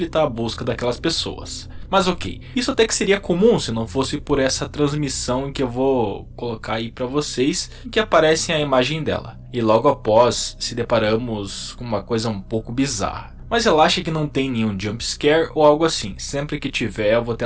a busca daquelas pessoas. Mas ok, isso até que seria comum se não fosse por essa transmissão em que eu vou colocar aí para vocês, em que aparece a imagem dela. E logo após se deparamos com uma coisa um pouco bizarra. Mas relaxa que não tem nenhum jump scare ou algo assim, sempre que tiver eu vou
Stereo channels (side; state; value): both; identical; correlation 1.00